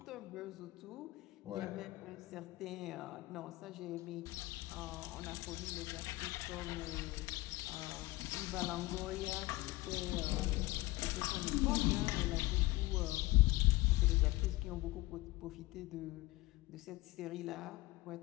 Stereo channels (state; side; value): quieter; right; 20.1 dB